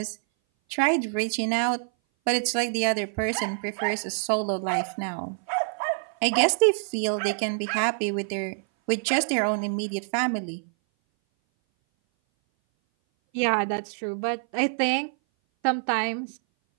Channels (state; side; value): silent; left; 58 dB below the other